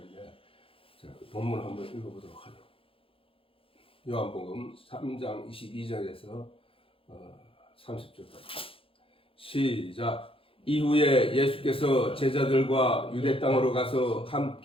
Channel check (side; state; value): right; late; 0.27 ms